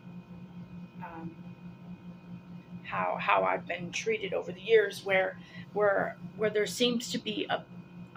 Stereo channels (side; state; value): both; identical; correlation 1.00